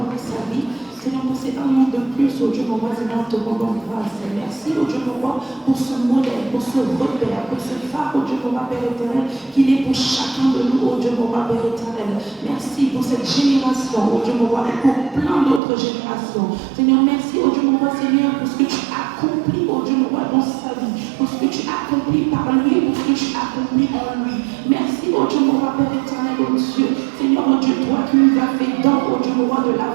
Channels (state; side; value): drops out; left; at 15.6 s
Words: pour sa vie. Seigneur, pour ces un an de plus, oh Dieu, mon roi, Seigneur, te rendons grâce. Merci, oh Dieu, mon roi, pour ce modèle, pour ce repère, pour ce phare, oh Dieu, mon roi, Père éternel, qu'il est pour chacun de nous, oh Dieu, mon roi, Père éternel. Merci pour cette génération, oh Dieu, mon roi, et pour plein d'autres générations. Seigneur, merci, oh Dieu, mon roi, Seigneur, pour ce que tu accomplis, oh Dieu, mon roi, dans sa vie, pour ce que tu accomplis par lui, pour ce que tu accomplis en lui. Merci, oh Dieu, mon roi, Père éternel, oh Dieu. Seigneur, oh Dieu, toi qui nous as fait don, oh Dieu, mon roi, de